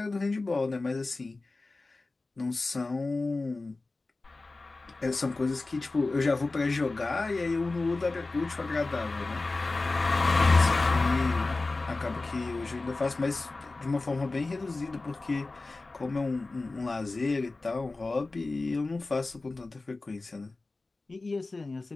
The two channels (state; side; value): quieter; right; 3.4 dB